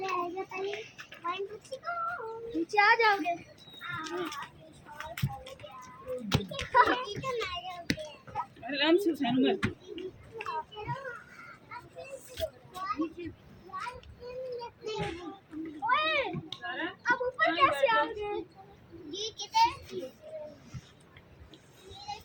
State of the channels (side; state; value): both; identical; correlation 1.00